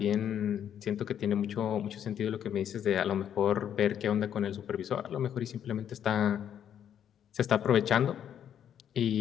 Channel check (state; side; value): quieter; right; 9.4 dB